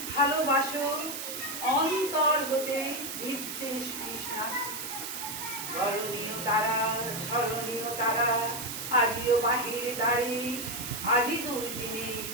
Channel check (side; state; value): right; noise; hiss, 6 dB below the sound